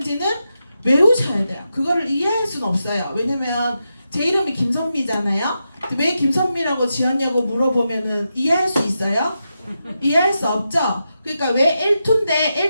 외우셔야 돼요. 그거를 이해할 수는 없어요. 왜냐면 제 이름이 김선미잖아요. 왜 김선미라고 지었냐고 물어보면은 이해할 수 있어요? 이해할 수 없죠? 그러니까 왜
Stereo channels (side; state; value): both; inverted; correlation -0.87